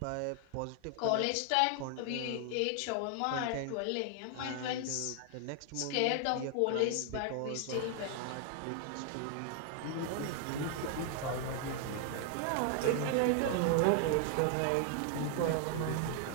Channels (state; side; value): different; both; correlation 0.00